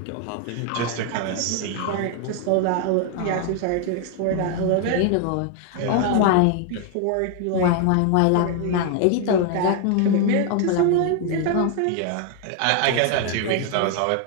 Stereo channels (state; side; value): different; both; correlation 0.00